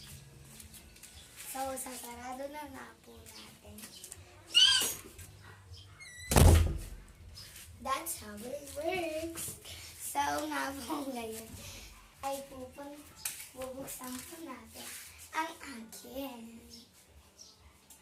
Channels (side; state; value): both; identical; correlation 1.00